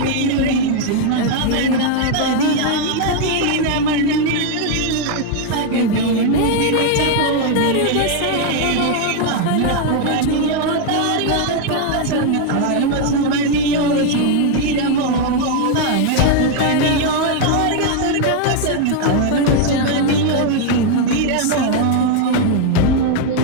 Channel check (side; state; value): both; different; correlation 0.01